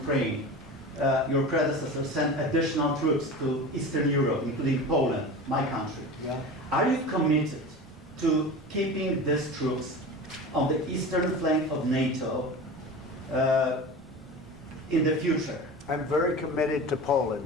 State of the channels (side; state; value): both; normal; correlation 0.32